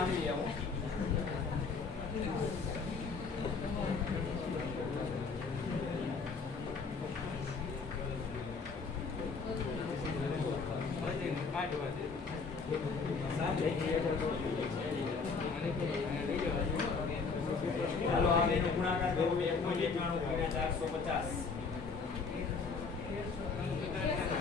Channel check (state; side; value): quieter; right; 4.8 dB